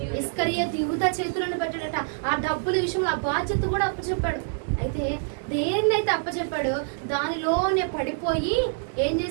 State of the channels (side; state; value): left; silent; digital silence